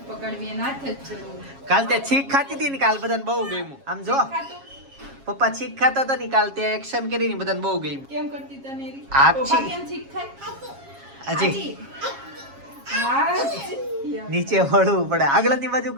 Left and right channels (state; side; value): late; left; 7.3 ms